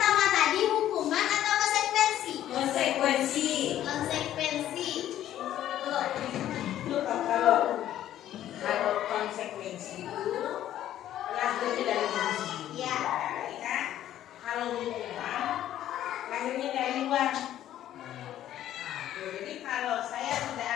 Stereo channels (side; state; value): right; quieter; 12.2 dB